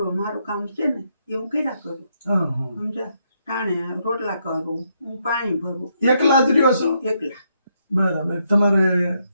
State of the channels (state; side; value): inverted; both; correlation -0.77